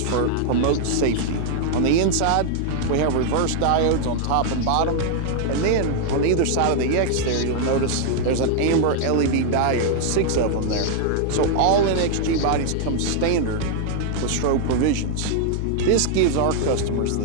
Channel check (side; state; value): both; different; correlation 0.00